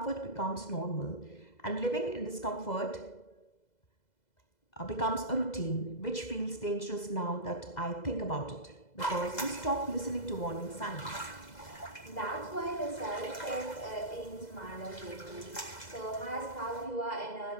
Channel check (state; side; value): late; right; 2.0 ms